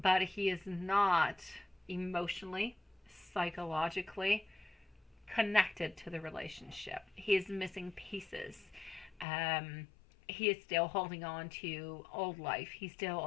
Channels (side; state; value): right; drops out; at 9.2 s